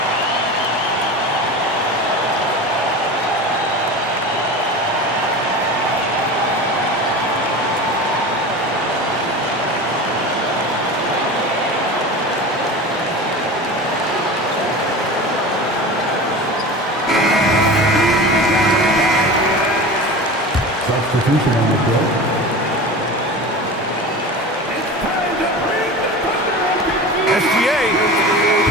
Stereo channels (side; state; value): both; normal; correlation 0.31